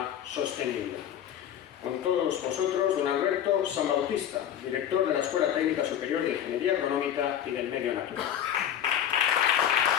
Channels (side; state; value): right; quieter; 10.1 dB